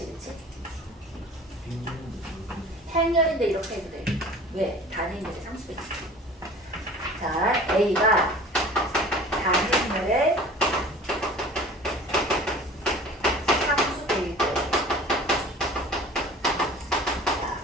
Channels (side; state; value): both; normal; correlation 0.43